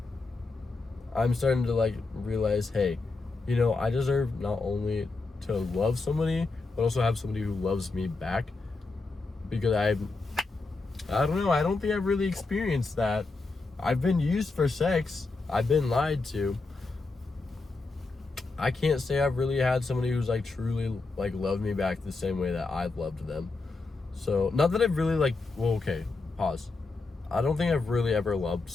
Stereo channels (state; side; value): quieter; right; 3.7 dB